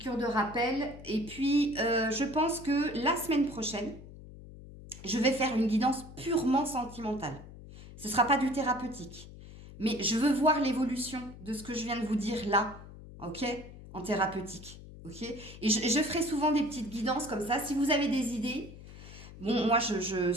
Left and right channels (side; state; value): left; noise; hum, 16 dB below the sound